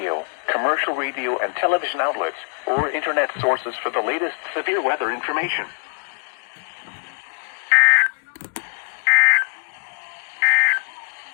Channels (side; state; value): right; silent; 60 dB below the other